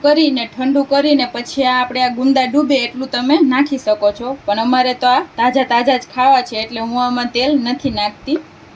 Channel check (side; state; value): both; identical; correlation 1.00